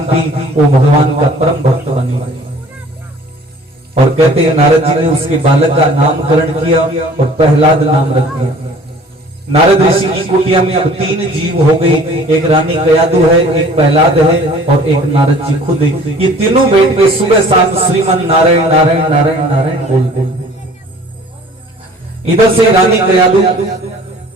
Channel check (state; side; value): normal; both; correlation 0.50